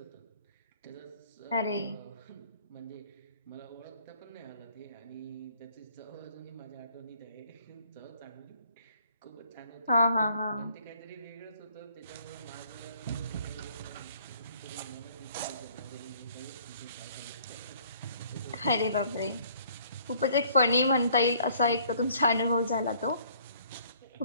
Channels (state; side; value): inverted; both; correlation -0.59